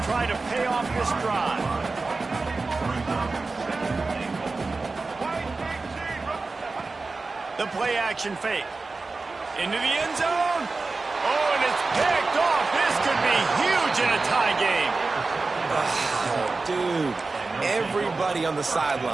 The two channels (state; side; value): quieter; left; 3.8 dB